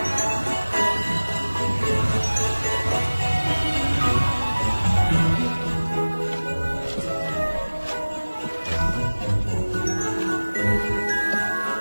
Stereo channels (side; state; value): both; inverted; correlation -1.00